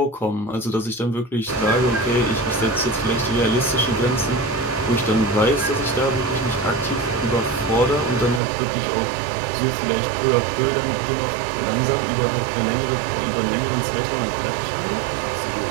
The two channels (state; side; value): drops out; left; at 8.4 s